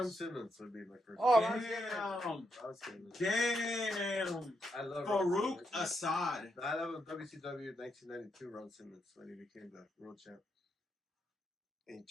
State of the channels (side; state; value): both; normal; correlation 0.80